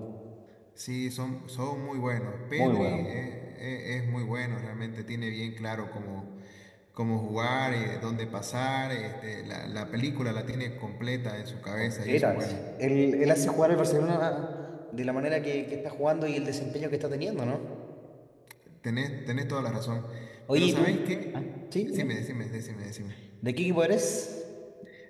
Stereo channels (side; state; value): both; identical; correlation 1.00